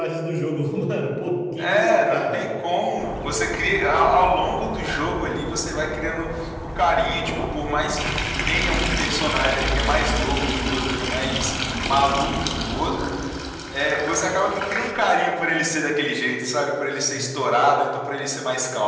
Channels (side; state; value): both; identical; correlation 1.00